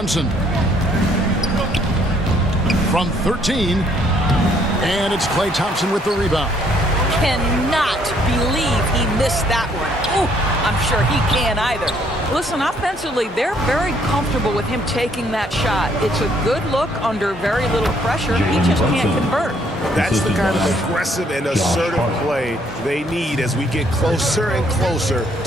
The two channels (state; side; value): normal; both; correlation 0.66